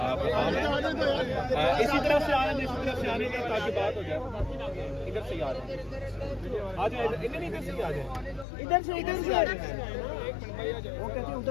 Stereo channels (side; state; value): right; drops out; at 8.5 s